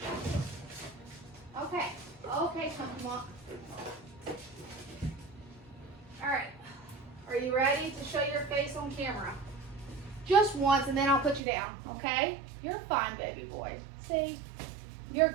Okay, come on. All right. Are you ready to show your face on camera? Just once, and then I'll put you down, okay? You're fine, baby boy. See? You're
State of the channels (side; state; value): left; drops out; at 11.4 s